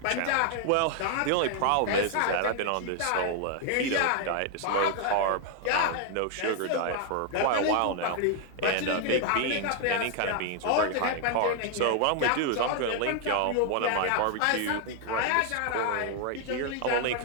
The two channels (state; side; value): different; both; correlation 0.00